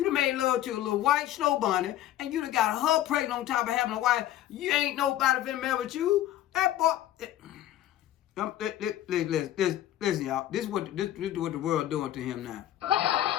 done made love to a little white snow bunny, and you done got her pregnant on top of having a wife. You ain't nobody finna mess with you. That boy. Listen, y'all. This is what the world doing to him now.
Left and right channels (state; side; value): quieter; right; 12.9 dB